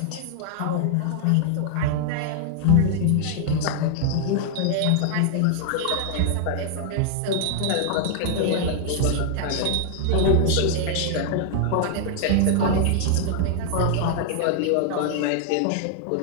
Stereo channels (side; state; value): both; different; correlation -0.01